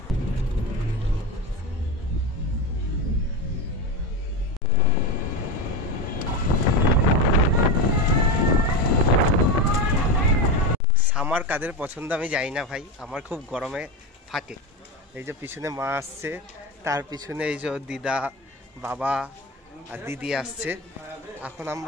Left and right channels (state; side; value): normal; both; correlation 0.20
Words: সামার কাদের পছন্দ আমি জানি না ভাই, আমার খুব গরমে ফাটে। এই যে পিছনে মা আসছে, তার পিছনে এই যে দিদা, বাবা আর দিদি আসছে। এখন